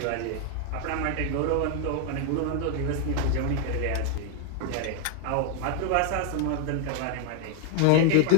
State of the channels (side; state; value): both; different; correlation 0.01